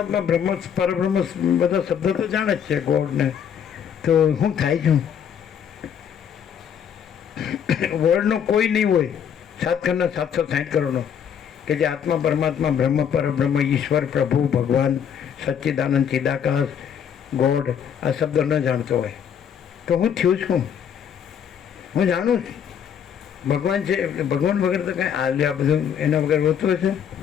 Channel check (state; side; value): quieter; right; 8.2 dB